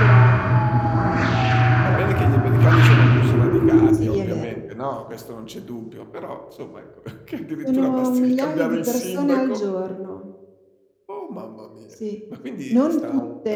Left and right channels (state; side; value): identical; both; correlation 1.00